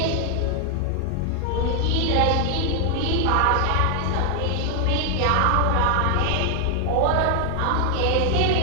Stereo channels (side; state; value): both; different; correlation 0.00